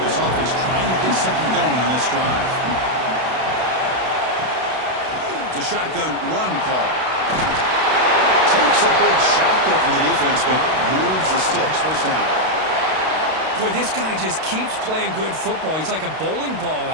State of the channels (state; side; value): late; left; 32 ms